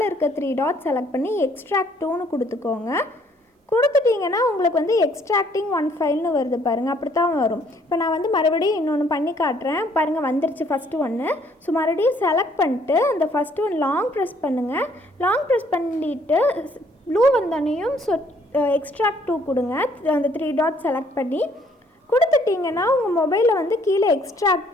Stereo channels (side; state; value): both; normal; correlation 0.64